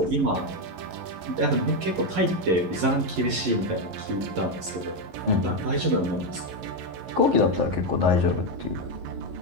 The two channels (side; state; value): left; late; 11 ms